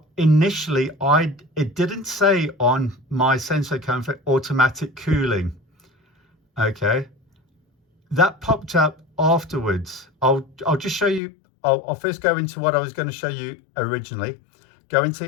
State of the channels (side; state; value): right; drops out; at 11.2 s